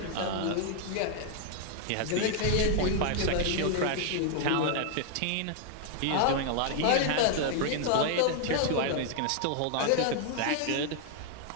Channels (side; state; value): both; different; correlation 0.00